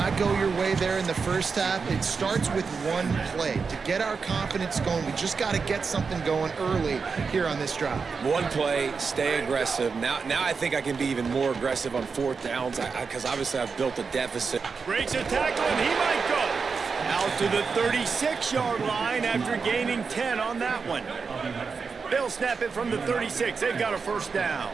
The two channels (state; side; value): quieter; left; 5.2 dB